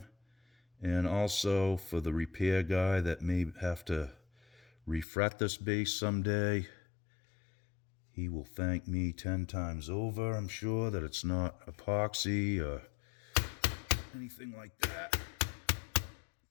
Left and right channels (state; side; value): drops out; right; at 5.1 s